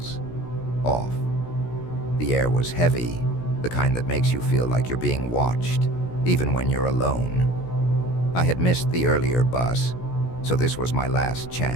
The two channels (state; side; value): late; right; 17 ms